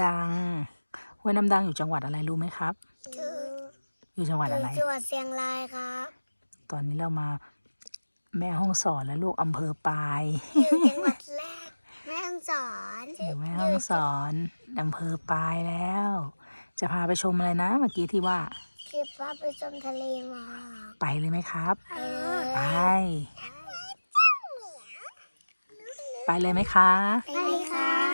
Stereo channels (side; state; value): both; inverted; correlation -1.00